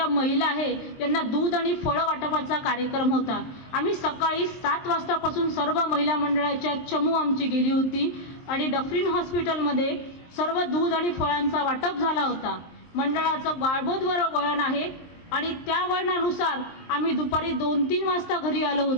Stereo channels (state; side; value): late; right; 23 ms